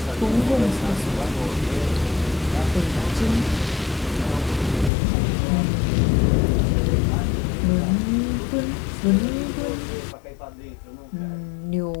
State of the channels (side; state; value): right; drops out; at 4.9 s